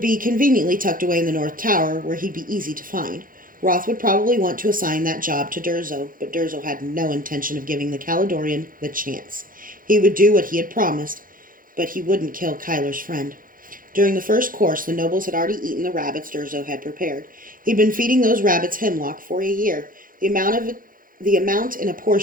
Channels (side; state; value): left; late; 0.40 ms